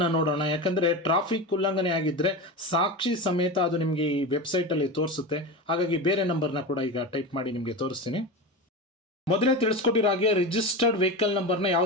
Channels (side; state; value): both; normal; correlation 0.23